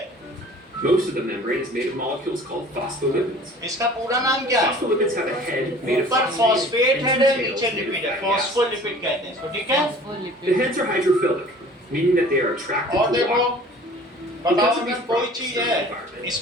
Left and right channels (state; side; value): normal; both; correlation 0.47